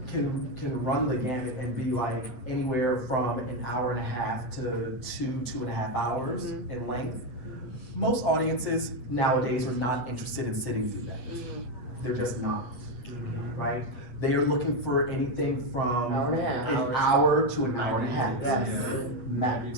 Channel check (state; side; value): late; right; 8.3 ms